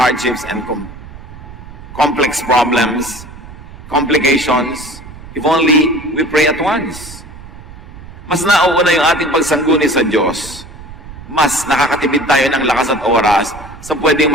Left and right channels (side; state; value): right; noise; rumble, 16 dB below the sound